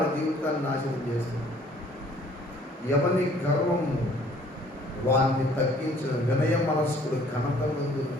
జీవితాన్ని నాశనం చేస్తుంది. ఎవరి గర్వము వారిని తగ్గించిన వినయ మనస్కుడు ఘనత ముందు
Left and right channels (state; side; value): normal; both; correlation 0.57